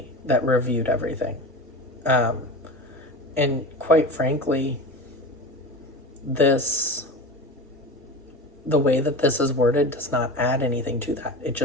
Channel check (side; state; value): both; normal; correlation 0.29